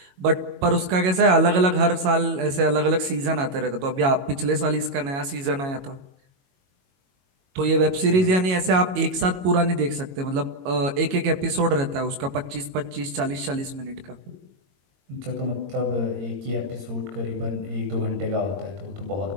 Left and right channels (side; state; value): left; late; 22 ms